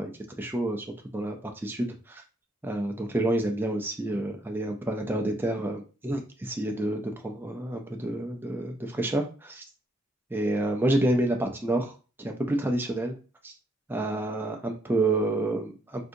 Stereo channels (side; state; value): both; normal; correlation 0.71